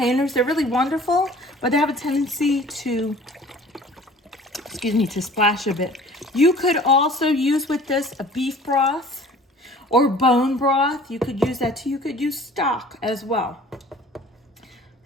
They're really wonderful, but they have a tendency to, to splash a bit. You could also use with this a beef broth or bone broth. You could use that too. You could use stock as well.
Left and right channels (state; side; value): normal; both; correlation 0.48